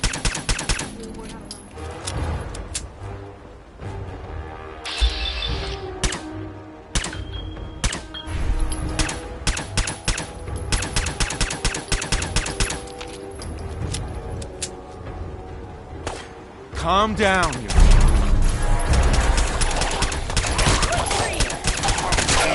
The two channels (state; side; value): identical; both; correlation 1.00